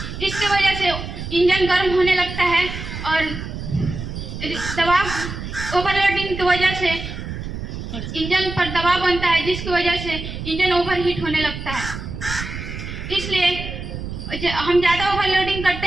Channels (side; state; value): right; noise; rumble, 8 dB below the sound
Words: इसकी वजह से इंजन गर्म होने लगता है और दबाव ओवरलोडिंग की वजह से इंजन पर दबाव बनता है, जिसकी वजह से इंजन ओवरहीट होने लगता है। इसलिए हम ज़्यादा ओवरलोडिंग करते